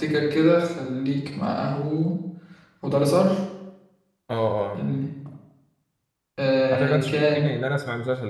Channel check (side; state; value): both; identical; correlation 1.00